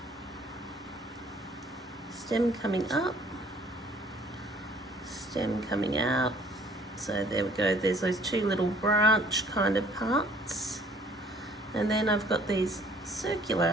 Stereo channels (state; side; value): normal; both; correlation 0.57